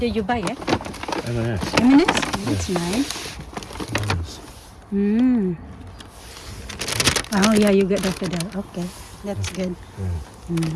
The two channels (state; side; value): identical; both; correlation 1.00